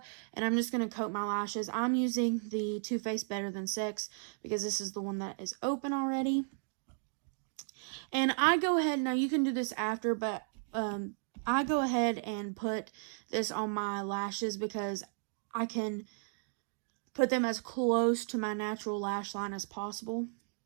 and I'm just going to coat my lashes. I'm using the Too Faced Better Than Sex because this is the one that is open already. And I go ahead, now you can do this after, but I go ahead and put this on my lashes because I can put them as close to my natural lash line as possible.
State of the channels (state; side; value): silent; left; digital silence